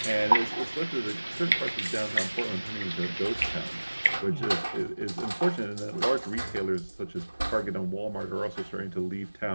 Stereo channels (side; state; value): both; inverted; correlation -1.00